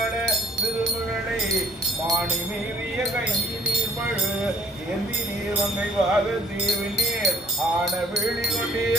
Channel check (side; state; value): both; normal; correlation 0.58